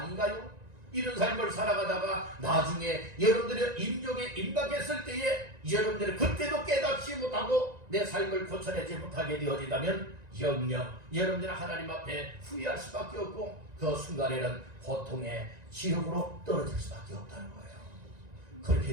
이런 삶을 살아가다가 나중에 여러분들의 임종에 임박했을 때에 여러분들이 그때도 깨닫지 못하고 내 삶을 고쳐내지 못하게 되어진다면 영영 여러분들은 하나님 앞에 후회할 수밖에 없고 그 순간에는 고통의 지옥으로 떨어질 수밖에 없다는 거예요.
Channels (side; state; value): left; late; 1.9 ms